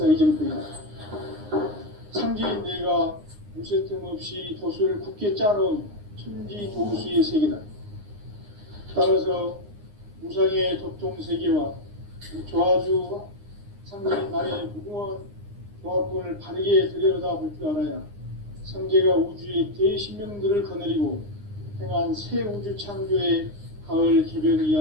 이정표이다. 상제인 내가 무쇠 틈 없이 돛을 굳게 짜놓은 천지 도수의 세계다. 따라서 무상의 도통 세계와 조화주 상제인 나의 무궁한 조합권을 바르게 들여다볼 줄 알아야 상제가 우주의 대신명들을 거느리고 행한 새 우주 창조의 가을 개벽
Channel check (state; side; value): late; left; 9.7 ms